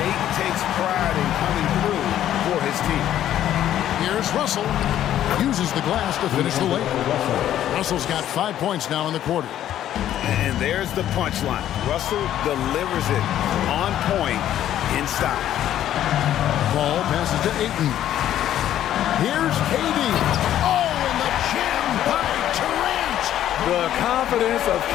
takes pride in coming through for his team. Here's Russell. Uses the glass to finish the layup. Russell's got 5 points now in the quarter. And there's the punchline. Russell delivers it on point in style. Ball passes to Ayton. Here's KD. Oh, and the jam by Durant. The confidence of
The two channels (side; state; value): right; quieter; 11.7 dB